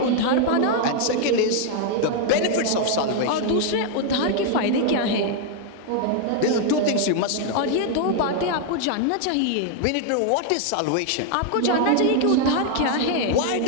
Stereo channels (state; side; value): different; both; correlation 0.00